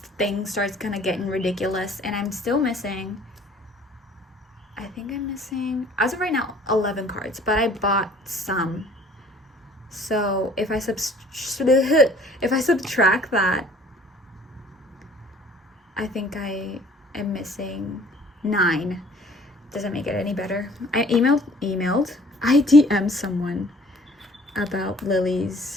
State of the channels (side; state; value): both; normal; correlation 0.53